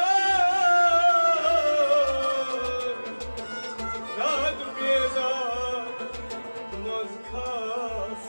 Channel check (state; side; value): inverted; both; correlation -1.00